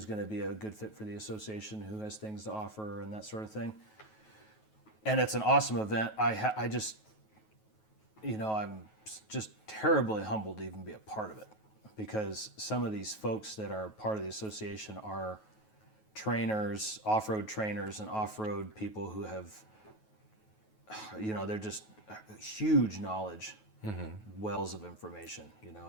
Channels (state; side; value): late; right; 9.3 ms